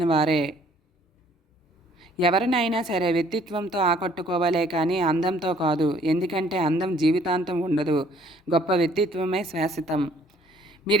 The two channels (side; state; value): both; normal; correlation 0.60